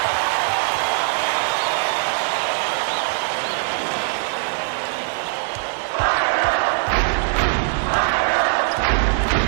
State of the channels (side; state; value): left; silent; digital silence